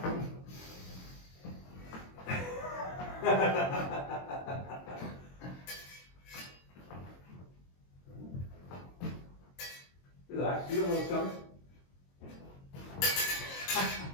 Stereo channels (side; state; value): right; late; 22 ms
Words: Relax, you don't know what's coming.